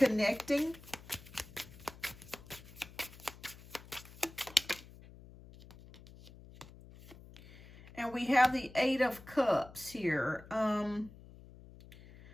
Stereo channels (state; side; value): noise; left; hum, 19 dB below the sound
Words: And we have the Eight of Cups here.